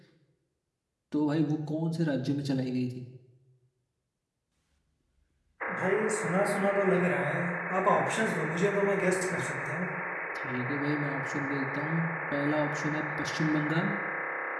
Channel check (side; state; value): both; identical; correlation 1.00